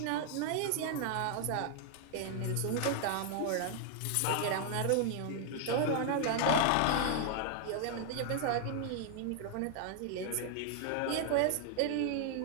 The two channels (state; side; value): different; both; correlation 0.00